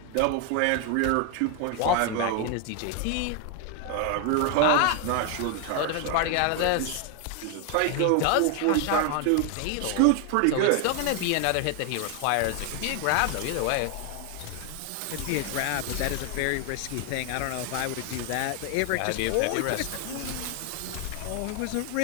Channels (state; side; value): different; both; correlation 0.01